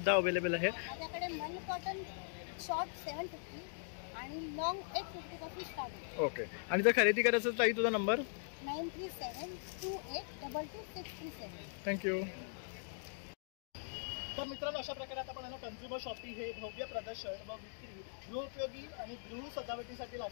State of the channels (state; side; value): silent; right; digital silence